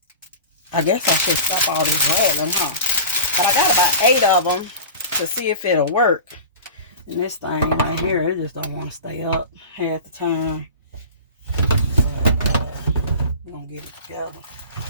I guess I should stop all this rattling, huh? But I got about 8 of them to see if it'll work. And this thing right here, it just don't want to stay up half the time. But we're going to get it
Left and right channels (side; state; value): both; inverted; correlation -0.36